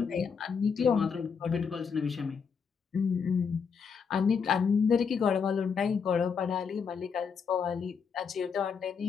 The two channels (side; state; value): right; quieter; 6.2 dB